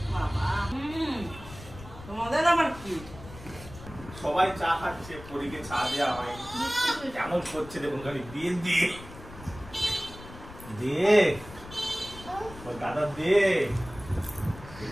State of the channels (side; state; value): left; noise; rumble, 16 dB below the sound